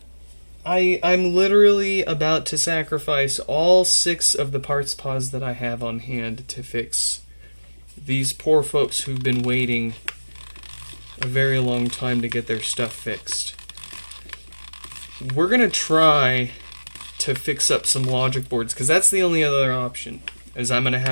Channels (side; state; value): both; inverted; correlation -1.00